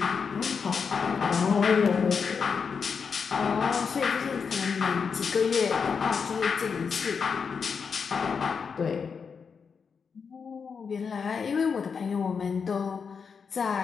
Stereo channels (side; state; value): right; quieter; 5.9 dB